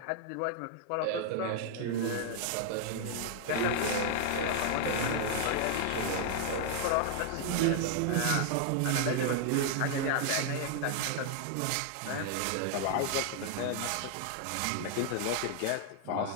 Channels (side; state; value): both; different; correlation 0.00